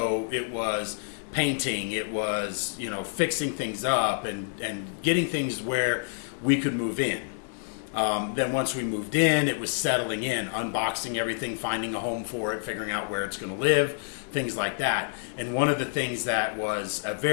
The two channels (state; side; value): silent; right; digital silence